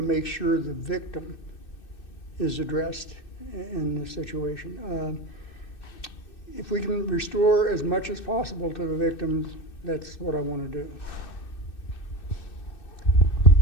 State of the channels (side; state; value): right; late; 2.6 ms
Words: make sure the victim is addressed in this situation. If we can restore as much as possible to the victims, that's what I want to do.